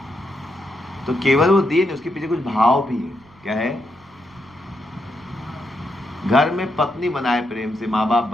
तो केवल वो दिए नहीं, उसके पीछे कुछ भाव भी है। क्या है? घर में पत्नी बनाए प्रेम से, माँ बाप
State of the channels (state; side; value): noise; right; rumble, 29 dB below the sound